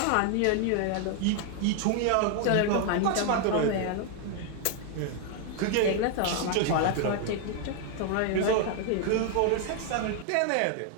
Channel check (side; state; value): both; different; correlation 0.00